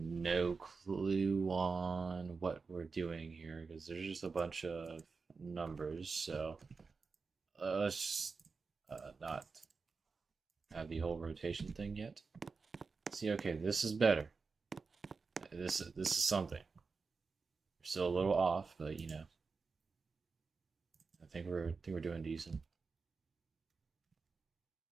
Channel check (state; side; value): quieter; left; 4.7 dB